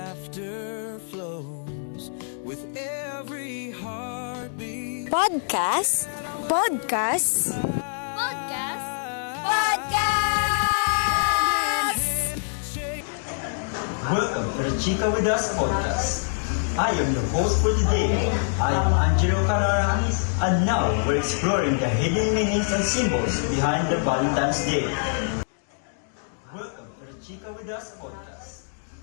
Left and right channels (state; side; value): silent; right; digital silence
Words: flows with every heartbeat. Podcast? Podcast? Podcast? Welcome to the Chica With Us podcast. I am your host for today. I am Angelo Canara, and now we're exploring the hidden meanings and symbols behind the Valentine's Day. Welcome to the Chica With Us podcast.